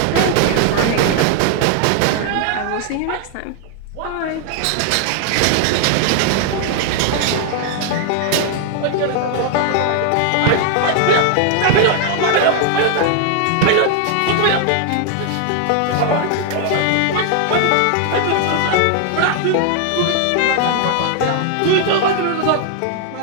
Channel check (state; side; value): different; both; correlation 0.00